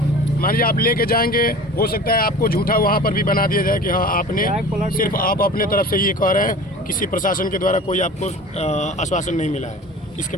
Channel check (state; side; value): normal; both; correlation 0.40